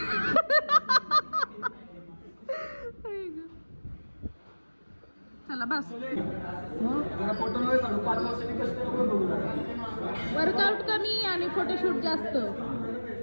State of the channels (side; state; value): both; inverted; correlation -1.00